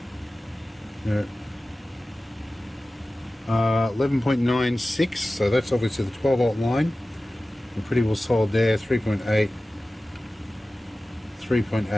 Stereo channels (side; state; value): both; normal; correlation 0.96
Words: 11.96, so that's obviously the 12 volt line. We're pretty well solid there. 3.8,